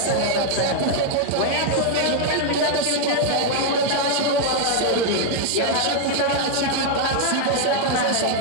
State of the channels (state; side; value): different; both; correlation 0.00